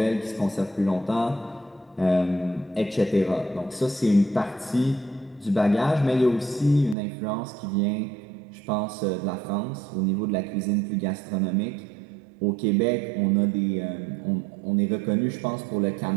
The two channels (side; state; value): left; drops out; at 7.0 s